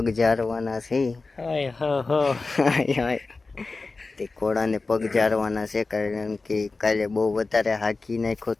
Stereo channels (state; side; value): quieter; right; 3.8 dB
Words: ઝારવાના છે. તે ઘોડાને પગ ઝારવાના છે કારણ કે કાલે બહુ વધારે હાંકી નાખ્યો